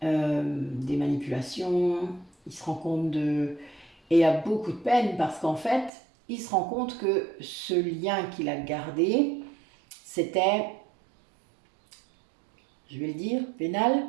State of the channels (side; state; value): left; drops out; at 5.9 s